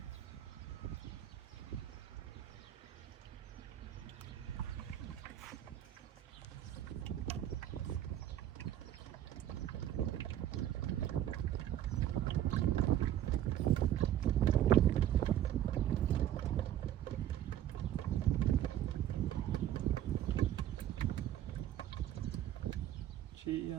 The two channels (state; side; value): quieter; left; 11.7 dB